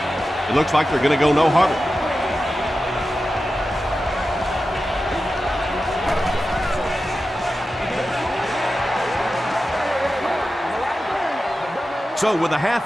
It looks like they're going to go no huddle. So with the half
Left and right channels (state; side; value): normal; both; correlation 0.92